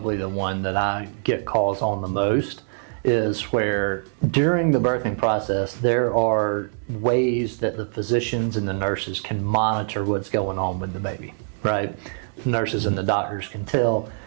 the one that I get calls on the most, is where during the birthing process there are ways that the physicians and the nurses can monitor what's going on with the baby, right? Nurses and the doctors can tell,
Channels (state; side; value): silent; left; digital silence